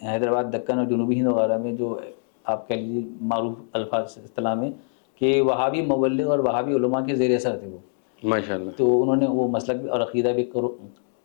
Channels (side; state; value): right; silent; 57 dB below the other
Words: حیدرآباد دکن اور جنوبی ہند وغیرہ میں جو آپ کہہ لیجیے معروف الفاظ اصطلاح میں کہ وہابی مبلغ اور وہابی علماء کے زیر اثر تھے وہ. ماشاء اللہ. تو انہوں نے وہ مسلک اور عقیدہ بھی